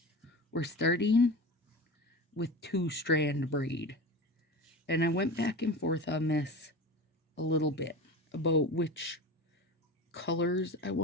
we're starting with 2-strand braid. And I went back and forth on this a little bit about which colors I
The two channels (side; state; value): both; normal; correlation 0.30